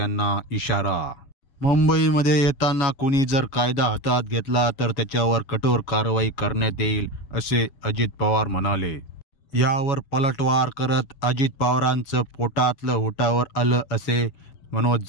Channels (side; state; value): right; late; 7.1 ms